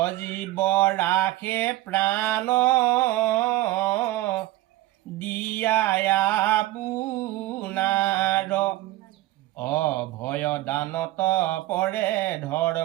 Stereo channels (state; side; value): quieter; left; 16.9 dB